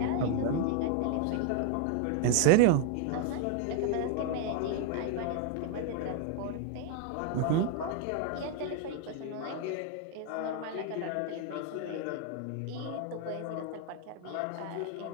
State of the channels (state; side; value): different; both; correlation 0.00